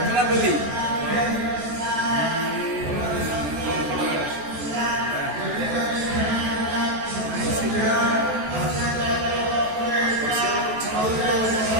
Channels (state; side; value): late; left; 14 ms